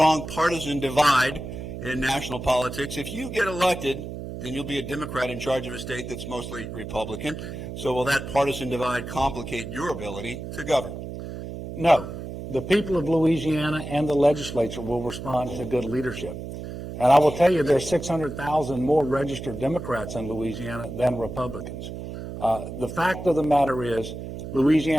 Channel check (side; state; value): right; noise; hum, 8 dB below the sound